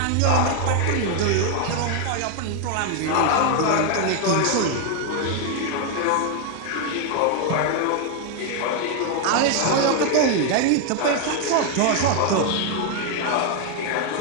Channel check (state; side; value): different; both; correlation 0.01